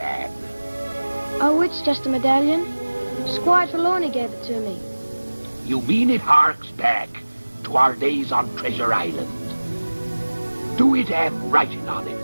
Oh, it's just a medallion. Squire Trelawney gave it to me. You mean it harks back to our days on Treasure Island? Do it have writing on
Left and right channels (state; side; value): inverted; both; correlation -1.00